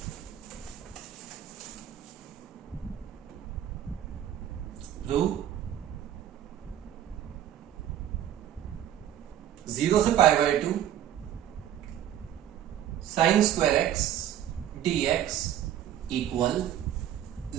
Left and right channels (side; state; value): left; quieter; 11.2 dB